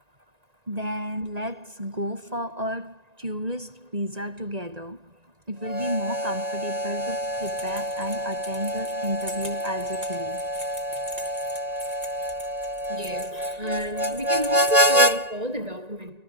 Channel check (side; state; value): left; late; 1.9 ms